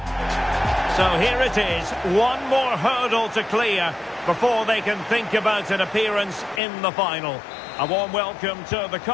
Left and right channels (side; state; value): right; drops out; at 6.6 s